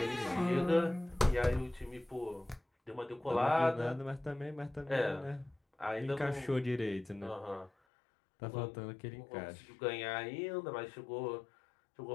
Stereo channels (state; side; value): drops out; right; at 7.7 s